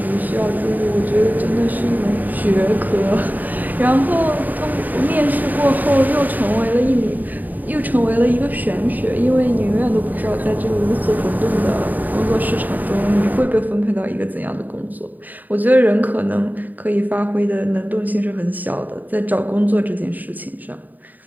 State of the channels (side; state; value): left; late; 0.084 ms